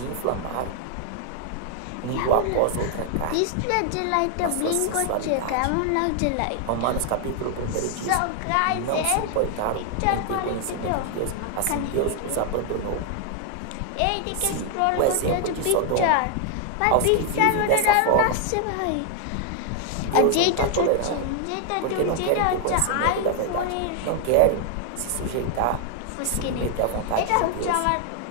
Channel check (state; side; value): different; both; correlation 0.00